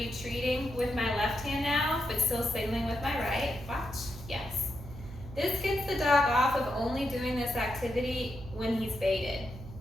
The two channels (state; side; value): noise; right; hum, 13 dB below the sound